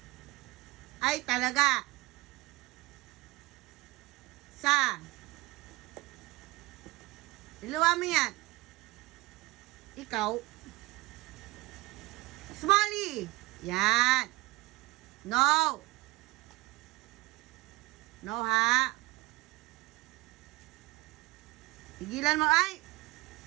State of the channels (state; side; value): quieter; left; 21.9 dB